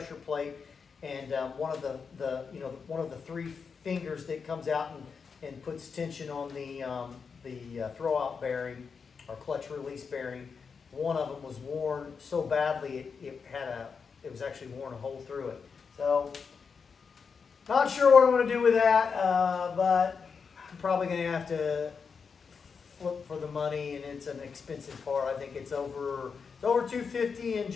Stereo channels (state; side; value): quieter; right; 5.7 dB